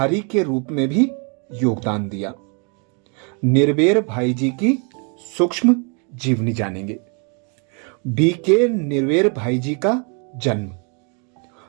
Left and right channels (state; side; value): quieter; left; 36.6 dB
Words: के रूप में भी योगदान दिया। निर्भर भाई जी की सूक्ष्म जीवनी जानेंगे। BK निर्भर भाई जी का जन्म